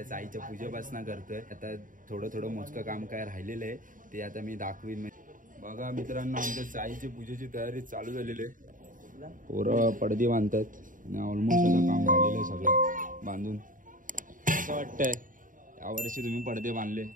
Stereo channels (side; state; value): left; late; 0.39 ms